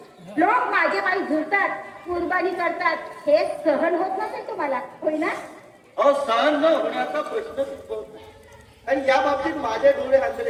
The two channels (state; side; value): identical; both; correlation 1.00